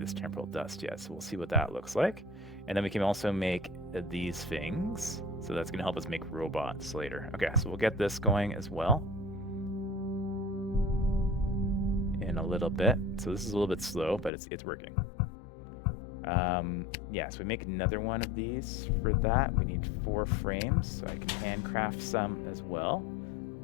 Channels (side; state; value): right; drops out; at 14.3 s